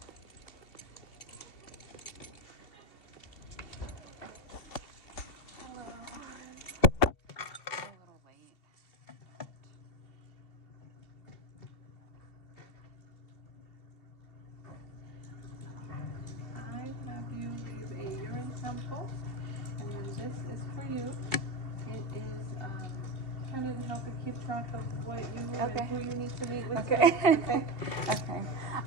sample. And then this is for you. It is kind of to help you keep track of what you and who you need to meet with. Okay. Okay. Okay.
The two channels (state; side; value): late; right; 2.7 ms